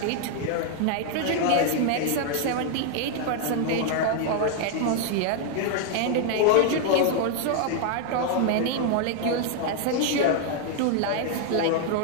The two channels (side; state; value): both; different; correlation 0.00